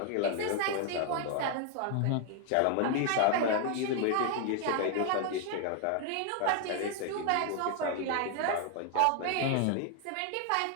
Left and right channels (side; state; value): both; different; correlation 0.00